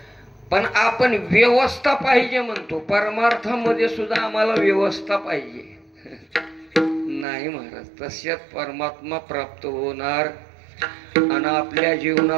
पण आपण व्यवस्था पाहिजे म्हणतो, परमार्थामध्ये सुद्धा आम्हाला व्यवस्था पाहिजे. नाही महाराज, तशात परमात्मा प्राप्त होणार आणि आपल्या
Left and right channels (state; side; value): drops out; left; at 7.2 s